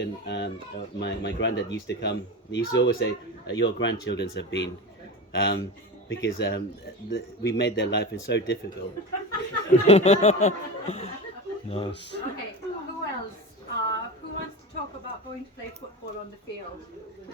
my granddad used to come, he used to always say, "Your grandchildren have been," because we made their life so difficult. Nice. Okay, who else? Who wants to talk about going to play football on the field?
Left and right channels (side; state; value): both; normal; correlation 0.25